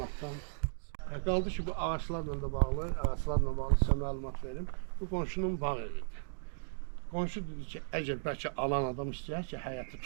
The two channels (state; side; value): silent; left; digital silence